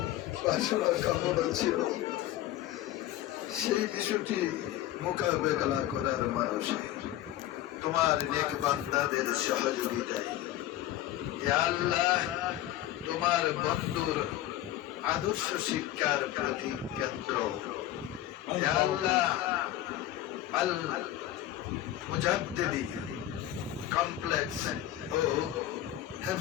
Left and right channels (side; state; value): right; quieter; 13.6 dB